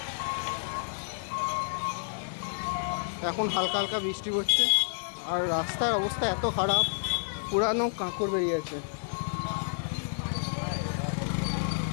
এখন হালকা হালকা বৃষ্টি পড়ছে আর রাস্তার অবস্থা এত খারাপ, পুরানো কাঁকড় বেরিয়েছে।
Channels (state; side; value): silent; right; digital silence